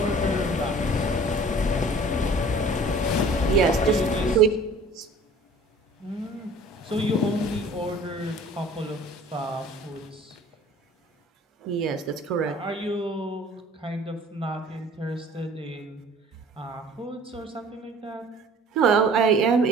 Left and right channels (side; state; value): both; normal; correlation 0.48